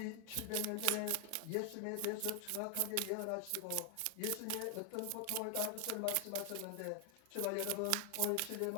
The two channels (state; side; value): different; both; correlation 0.00